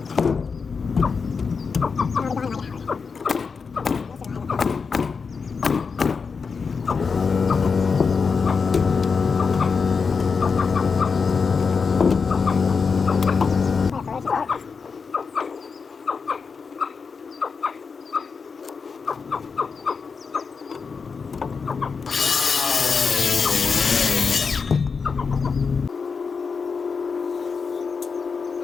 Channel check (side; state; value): right; quieter; 5.3 dB